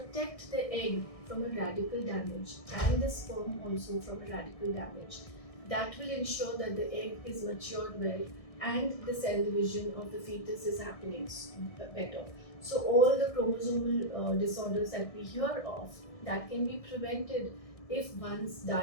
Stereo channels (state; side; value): late; right; 1.6 ms